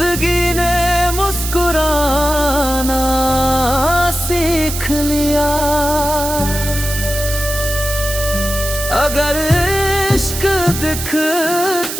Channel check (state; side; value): noise; right; hiss, 6 dB below the sound